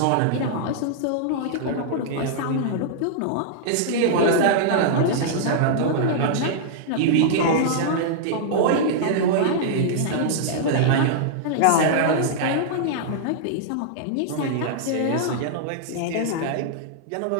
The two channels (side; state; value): both; different; correlation -0.01